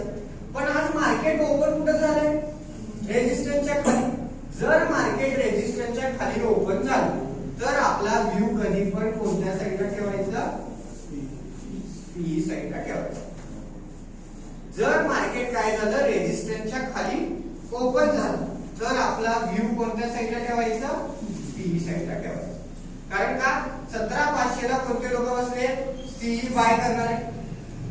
पण आज मार्केट ओपन कुठं झालंय, रेजिस्टन्सच्या खाली. जर मार्केट रेजिस्टन्सच्या खाली ओपन झालं तर आपला व्ह्यू कधी पण कोणत्या साईडला ठेवायचा, पी साईडला ठेवायचा. जर मार्केट काय झालं, रेजिस्टन्सच्या खाली ओपन झालं तर आपला व्ह्यू कोणत्या साईडला ठेवायचा, पी साईडला ठेवायचा. कारण का 17,500 ला कोणते लोक बसले, सी बाय करणारे.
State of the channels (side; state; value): both; identical; correlation 1.00